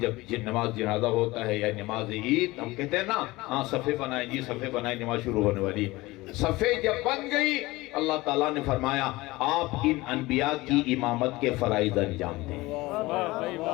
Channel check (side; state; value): right; quieter; 20.4 dB